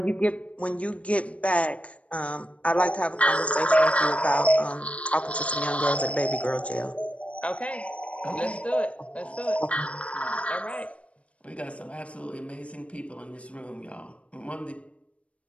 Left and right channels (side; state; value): right; late; 0.063 ms